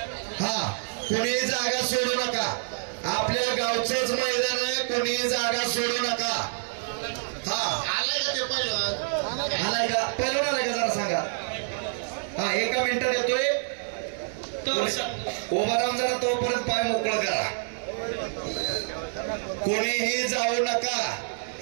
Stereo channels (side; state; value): left; silent; 60 dB below the other